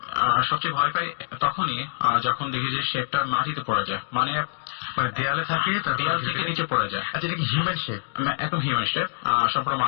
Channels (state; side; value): silent; right; digital silence